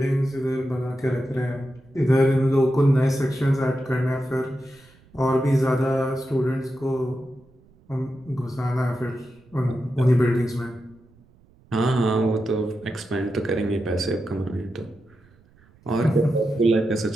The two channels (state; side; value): noise; right; rumble, 29 dB below the sound